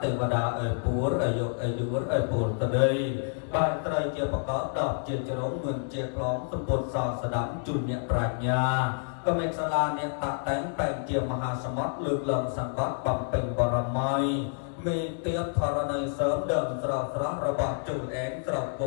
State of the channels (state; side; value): silent; right; digital silence